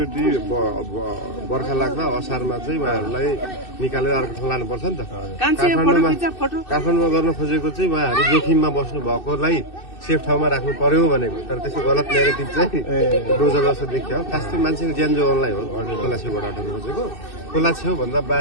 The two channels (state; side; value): late; right; 2.6 ms